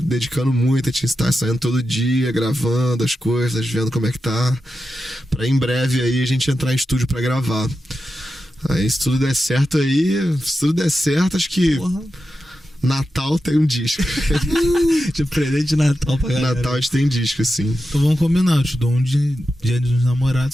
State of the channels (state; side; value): normal; both; correlation 0.90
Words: dedicando muito, a gente tá saindo todo dia, gravando as coisas, vendo como é que tá, pra em breve aí a gente entrar em estúdio pra gravar. Aí se tudo der certo acho que... Porra. Natal tem um disco. De presente de Natal pra galera. Natal a gente tem disco, assim. Então vamos combinar, eu te dou um dia dos